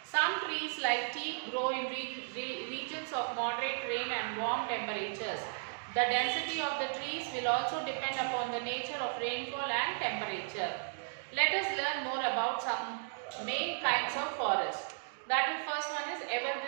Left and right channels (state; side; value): silent; left; digital silence